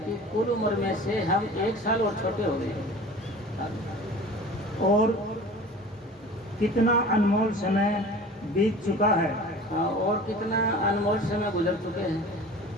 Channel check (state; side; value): normal; both; correlation 0.41